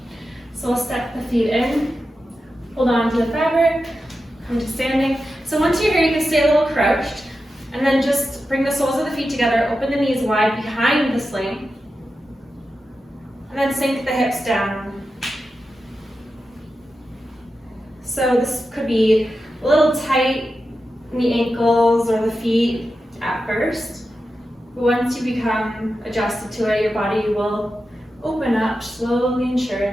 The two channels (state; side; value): normal; both; correlation 0.91